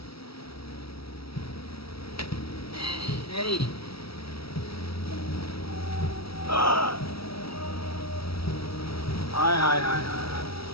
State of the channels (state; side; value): late; right; 0.76 ms